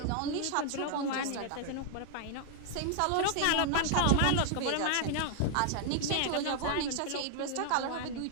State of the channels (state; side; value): different; both; correlation 0.00